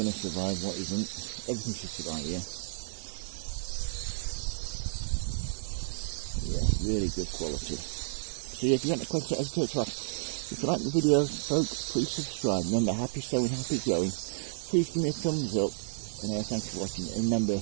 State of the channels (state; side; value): silent; left; digital silence